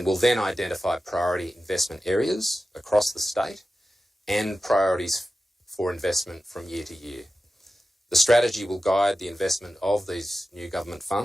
will then identify priority investment areas across the state and priorities for investment from year to year. The strategy will guide the investment of these new government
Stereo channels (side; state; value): both; normal; correlation 0.93